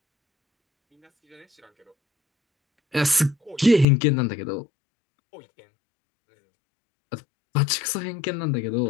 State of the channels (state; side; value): drops out; right; at 3.9 s